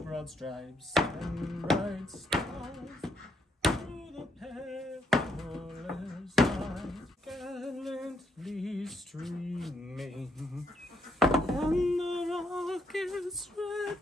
Broad stripes and bright stars through the perilous night, gallantly streaming on the rocket's red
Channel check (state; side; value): normal; both; correlation 0.74